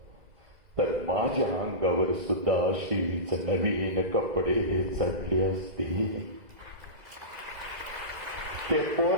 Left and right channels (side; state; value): left; late; 2.0 ms